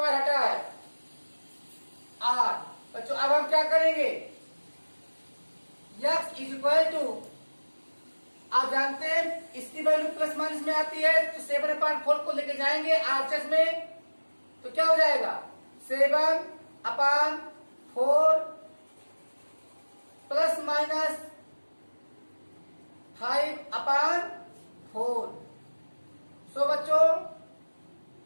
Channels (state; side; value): inverted; both; correlation -1.00